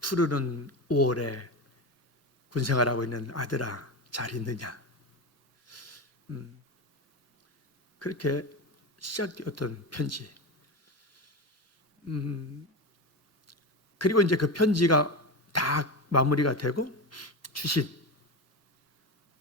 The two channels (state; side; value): normal; both; correlation 0.20